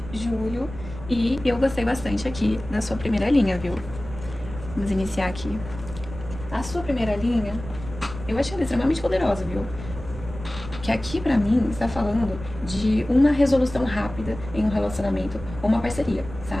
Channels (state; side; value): noise; right; rumble, 12 dB below the sound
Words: julho. E eu gostei bastante aqui da sua primeira linha, viu? Vamos iniciar aqui. A sua primeira linha, eu achei ela extremamente poderosa, viu? Que aqui pra mim está falando de uma resolução rápida em um relacionamento ou uma parceria,